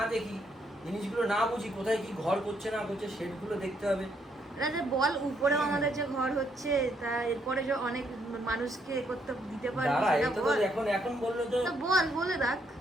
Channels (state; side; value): normal; both; correlation 0.73